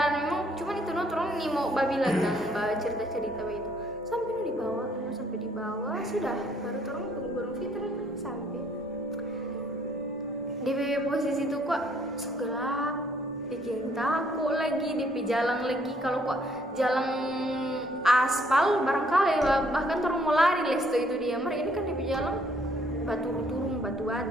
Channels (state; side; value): normal; both; correlation 0.65